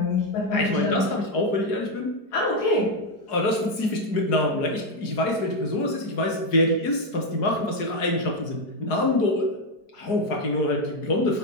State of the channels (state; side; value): late; right; 4.8 ms